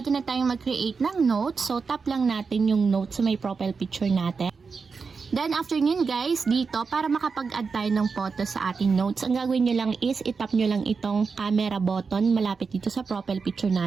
na tayong mag-create ng notes. So tap lang natin yung notes sa may profile picture natin. Then after nyo guys, dito para makapag-add tayo ng photo sa ating notes, ang gagawin nyo lang is itap nyo lang itong camera button malapit dito sa profile picture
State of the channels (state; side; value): quieter; left; 5.1 dB